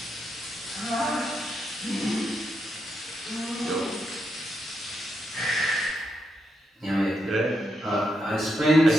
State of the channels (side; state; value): both; normal; correlation 0.82